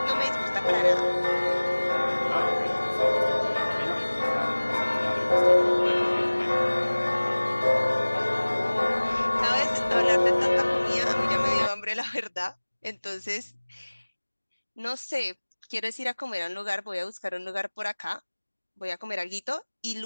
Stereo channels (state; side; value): inverted; both; correlation -1.00